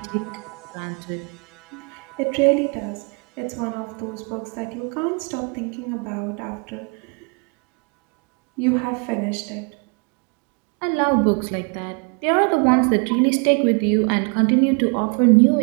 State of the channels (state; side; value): quieter; left; 35.3 dB